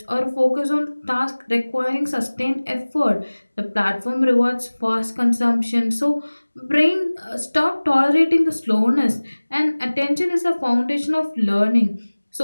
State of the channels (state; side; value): inverted; both; correlation -1.00